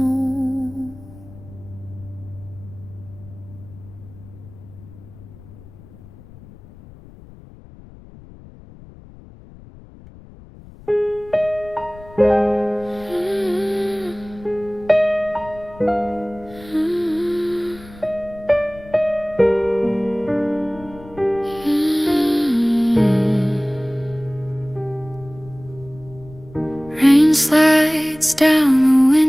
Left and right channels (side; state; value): left; noise; rumble, 20 dB below the sound